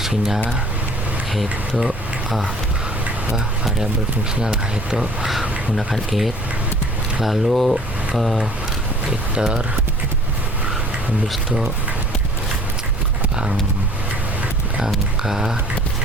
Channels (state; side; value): normal; both; correlation 0.52